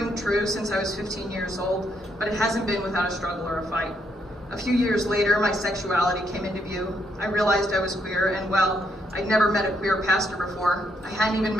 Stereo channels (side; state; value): both; normal; correlation 0.75